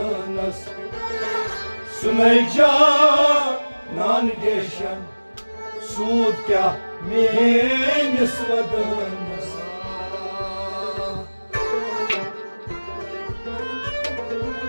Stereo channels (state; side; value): inverted; both; correlation -1.00